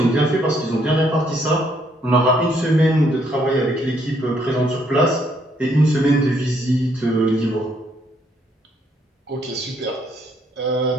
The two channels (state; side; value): normal; both; correlation 0.70